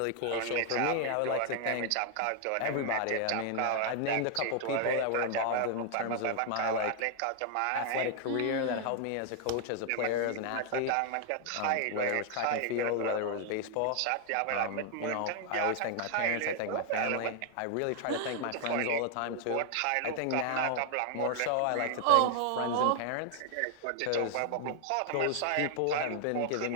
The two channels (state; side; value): different; both; correlation 0.00